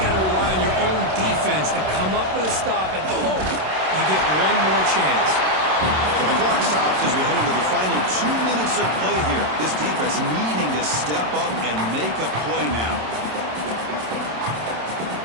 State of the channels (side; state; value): left; late; 27 ms